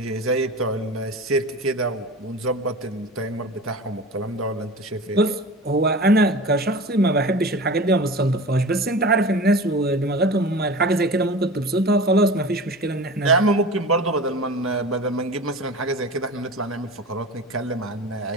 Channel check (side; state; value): both; normal; correlation 0.34